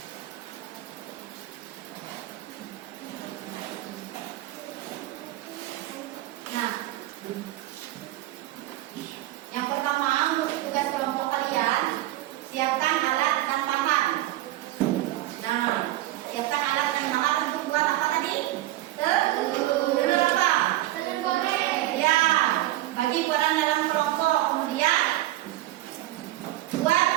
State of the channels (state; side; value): quieter; left; 16.0 dB